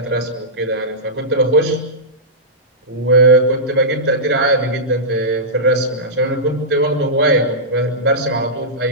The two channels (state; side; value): normal; both; correlation -0.14